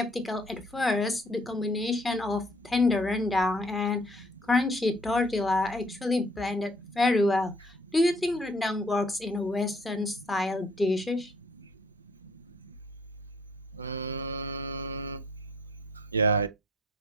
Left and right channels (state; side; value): normal; both; correlation 0.61